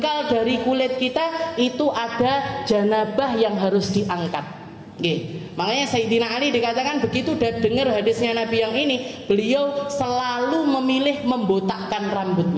dari kulit kita itu ada janabah yang harus diangkat. Makanya Sayyidina Ali dikatakan begitu dengar hadisnya Nabi yang ini, beliau selalu memilih membotakkan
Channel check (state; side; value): identical; both; correlation 1.00